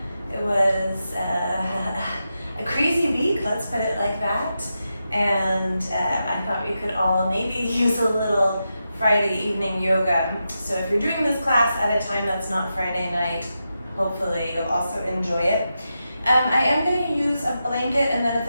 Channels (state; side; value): inverted; both; correlation -0.88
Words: It was a crazy week, let's put it like that. And I thought we could all maybe use a little Friday evening yoga. So if you're doing this class at a time that's not Friday night, hopefully you'll also enjoy it. I am going to use a blanket, and then at